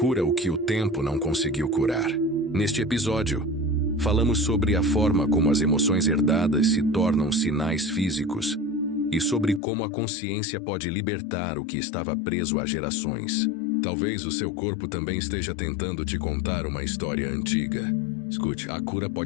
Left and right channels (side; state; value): right; drops out; at 9.6 s